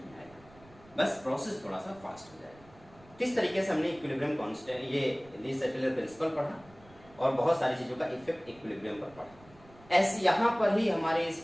आएगा, बस प्रोसेस थोड़ा सा फास्ट हो जाएगा। किस तरीके से हमने इक्विलिब्रियम कांस्टेंट, ये ली सेटलर प्रिंसिपल पढ़ा और बहुत सारी चीजों का इफेक्ट इक्विलिब्रियम पर पढ़ा। ऐसे यहाँ पर ही हमारे इस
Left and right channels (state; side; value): noise; right; rumble, 25 dB below the sound